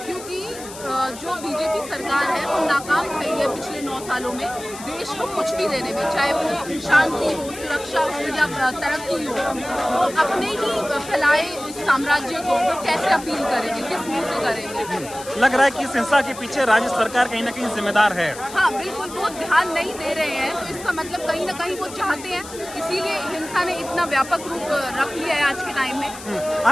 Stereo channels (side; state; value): left; noise; hiss, 14 dB below the sound